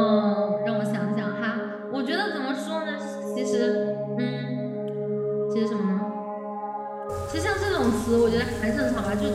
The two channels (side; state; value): both; identical; correlation 1.00